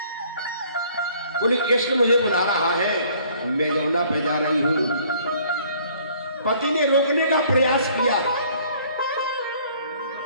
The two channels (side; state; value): both; inverted; correlation -0.58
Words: बोली कृष्ण मुझे बुला रहा है, मैं यमुना पे जा रही हूं। पति ने रोकने का प्रयास किया,